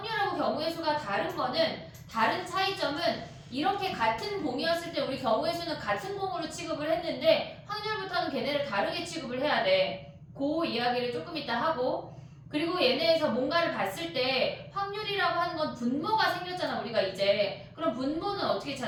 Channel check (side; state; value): both; identical; correlation 1.00